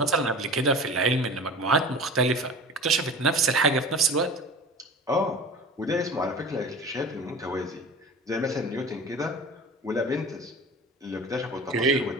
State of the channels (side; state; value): both; normal; correlation 0.36